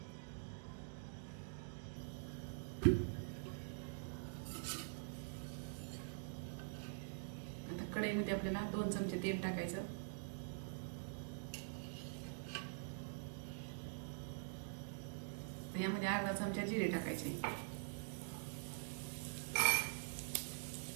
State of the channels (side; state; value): left; silent; digital silence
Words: कढईमध्ये आपल्याला 2 चमचे तेल टाकायचं. यामध्ये अर्धा चमचा जिरे टाकायचे.